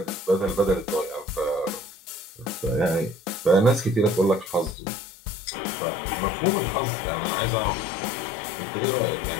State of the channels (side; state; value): right; drops out; at 4.8 s